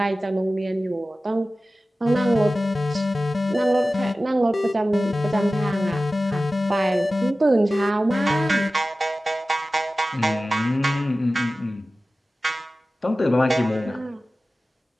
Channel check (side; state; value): both; normal; correlation 0.96